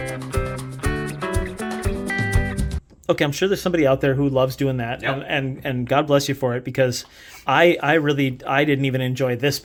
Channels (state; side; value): identical; both; correlation 1.00